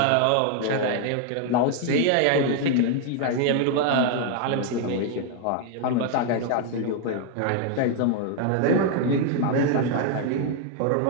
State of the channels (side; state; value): both; different; correlation 0.00